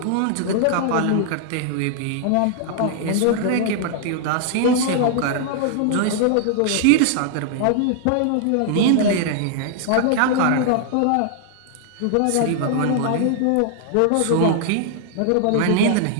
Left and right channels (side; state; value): both; different; correlation 0.00